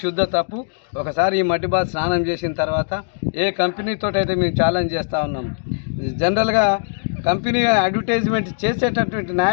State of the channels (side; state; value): right; silent; digital silence